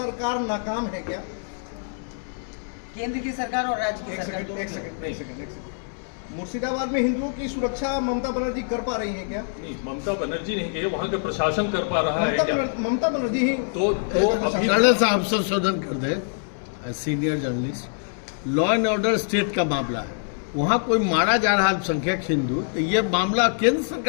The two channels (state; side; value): silent; right; digital silence